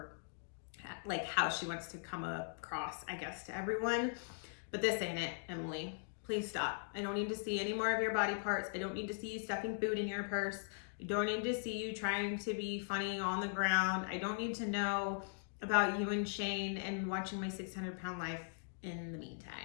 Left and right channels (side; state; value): right; silent; digital silence